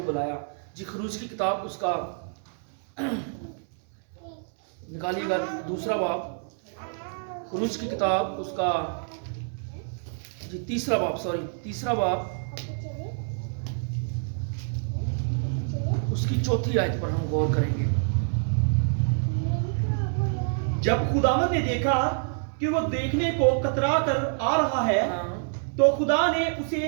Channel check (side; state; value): left; silent; 60 dB below the other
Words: बुलाया? जी खरूज की किताब उसका निकालिएगा, दूसरा बाब, खरूज की किताब उसका जी तीसरा बाब उसकी चौथी आयत पर हम गौर करेंगे। जब खुदावंद ने देखा कि वो देखने को कतरा कर आ रहा है, तो खुदा ने